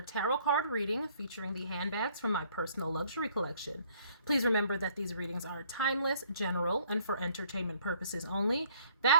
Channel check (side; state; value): both; inverted; correlation -0.61